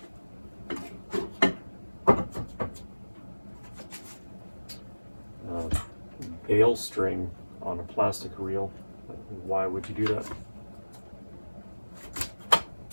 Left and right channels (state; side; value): inverted; both; correlation -1.00